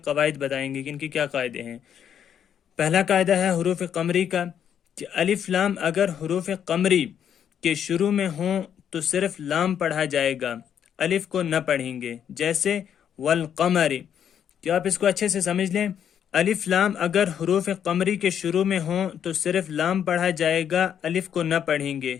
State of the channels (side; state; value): right; quieter; 8.9 dB